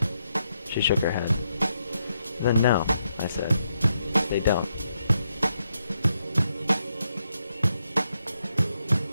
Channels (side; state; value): both; inverted; correlation -0.80